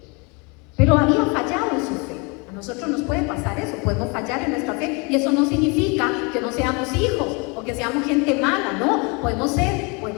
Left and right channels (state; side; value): quieter; right; 30.4 dB